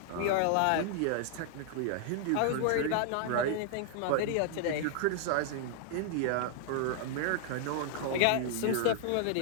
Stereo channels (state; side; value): different; both; correlation -0.01